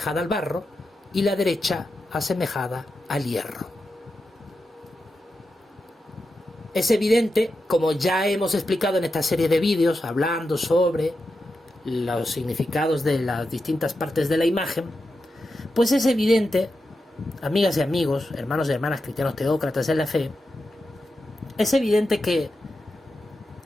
al barro, y la derecha, asemejada al hierro. Es evidente, como ya hemos explicado en esta serie de vídeos, hablando sobre los significados de las distintas partes de la imagen, pues es evidente, amigas y amigos, hermanos y hermanas cristianos teócratas en la fe, es evidente que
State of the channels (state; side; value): normal; both; correlation 0.89